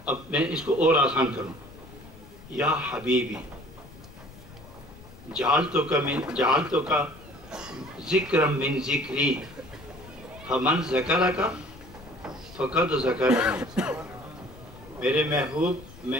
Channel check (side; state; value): left; noise; rumble, 19 dB below the sound